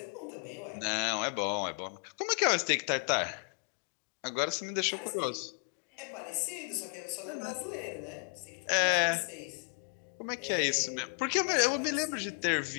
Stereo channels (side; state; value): right; quieter; 38.2 dB